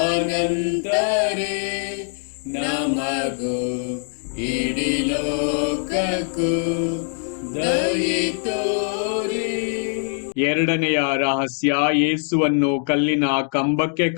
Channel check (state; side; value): silent; right; 60 dB below the other